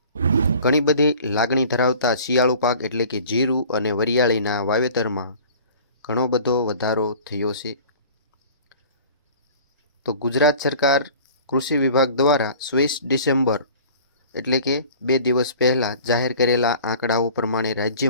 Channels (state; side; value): inverted; both; correlation -0.45